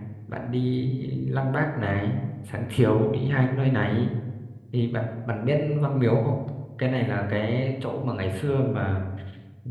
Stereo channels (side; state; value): both; identical; correlation 1.00